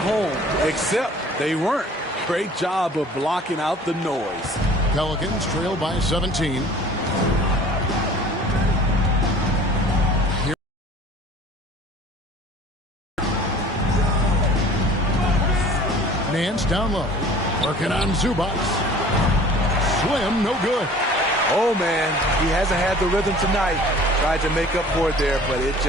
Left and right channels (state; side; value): normal; both; correlation 0.48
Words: except they weren't. Great job of blocking out the noise. Pelicans trail by 17. Nance down low. Working on Zubac. Slim, no good. Oh, man. He hasn't had the rhythm tonight. Tried to make up for it there, but it